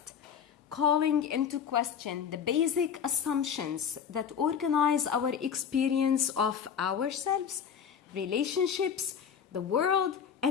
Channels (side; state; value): right; quieter; 7.6 dB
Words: calling into question the basic assumptions that organize our experience of ourselves, relationships, the world,